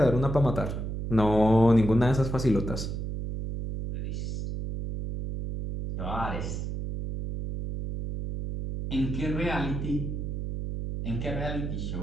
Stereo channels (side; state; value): right; noise; hum, 4 dB below the sound